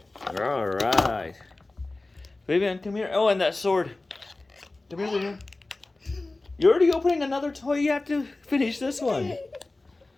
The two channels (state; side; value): quieter; right; 3.1 dB